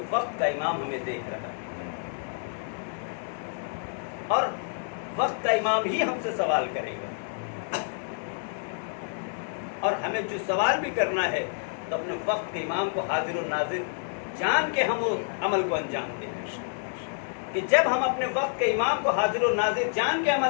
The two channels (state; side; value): silent; right; 59 dB below the other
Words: وقت کا امام ہمیں دیکھ رہا ہے، اور وقت کا امام ہی ہم سے سوال کرے گا۔ اور ہمیں جو سوال بھی کرنا ہے تو اپنے وقت کے امام کو حاضر و ناظر جان کے ہم اس عمل کو انجام دیں، کہ جب ہم اپنے وقت کے امام کو حاضر و ناظر جان کے